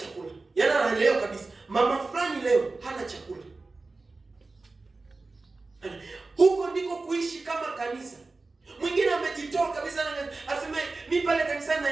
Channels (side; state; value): left; quieter; 3.6 dB